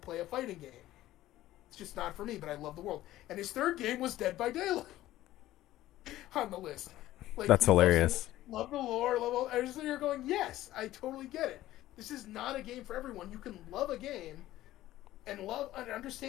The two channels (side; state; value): right; quieter; 15.0 dB